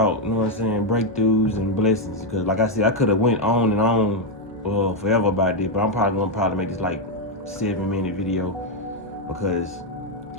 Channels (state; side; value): normal; both; correlation 0.01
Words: you know what I'm saying, breakthroughs and blessings. Because like I said, I could have went on and on forever about this, but I'm probably gonna make this like 7-minute video, because